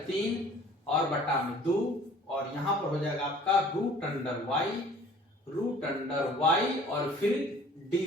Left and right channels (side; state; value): both; normal; correlation 0.51